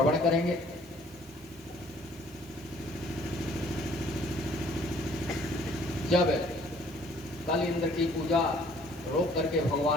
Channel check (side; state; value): right; noise; hiss, 23 dB below the sound